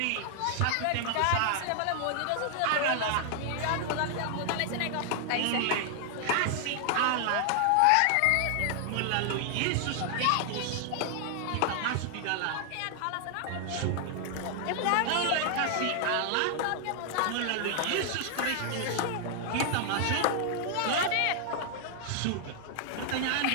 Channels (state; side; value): different; both; correlation 0.00